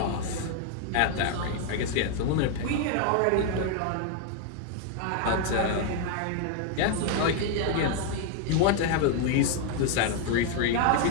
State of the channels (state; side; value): different; both; correlation 0.00